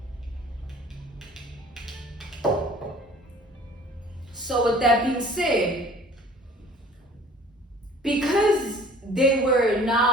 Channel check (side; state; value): both; normal; correlation 0.49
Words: So with that being said, because they were